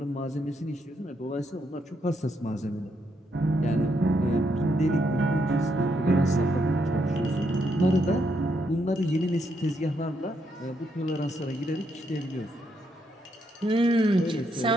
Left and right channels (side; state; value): both; normal; correlation 0.77